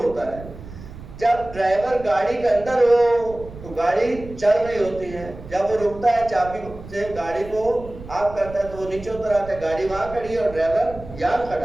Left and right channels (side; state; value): right; noise; rumble, 15 dB below the sound